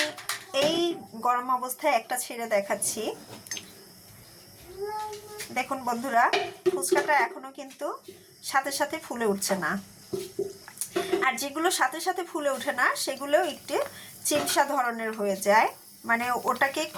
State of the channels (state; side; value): identical; both; correlation 1.00